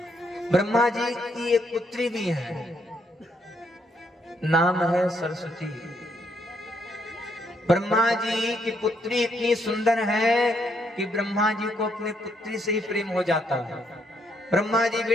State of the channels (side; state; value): both; normal; correlation 0.74